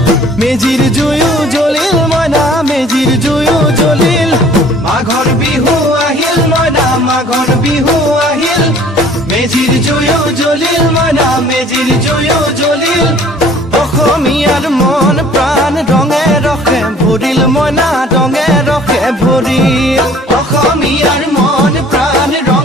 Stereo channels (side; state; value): both; normal; correlation 0.53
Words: মেজিৰ জুয়ো জ্বলিল মইনা মেজিৰ জুয়ো জ্বলিল মাঘৰ বিহু আহিল মইনা মাঘৰ বিহু আহিল মেজিৰ জুয়ো জ্বলিল মইনা মেজিৰ জুয়ো জ্বলিল অসমীয়াৰ মন প্ৰাণ ৰঙে ৰখে ভৰিল মইনা ৰঙে ৰখে ভৰিল অসমীয়াৰ মন প্ৰাণ